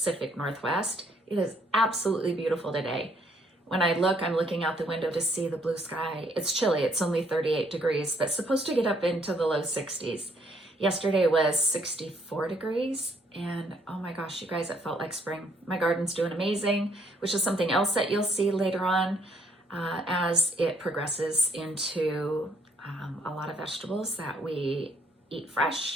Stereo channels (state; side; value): normal; both; correlation 0.68